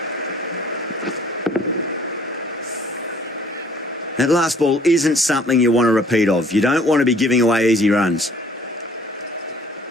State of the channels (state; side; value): normal; both; correlation 0.57